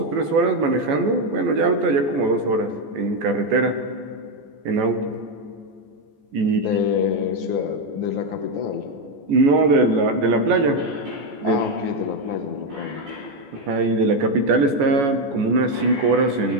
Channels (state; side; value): late; left; 14 ms